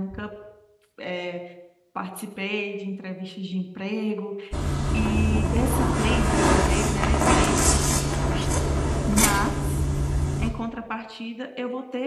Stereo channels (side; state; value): both; identical; correlation 1.00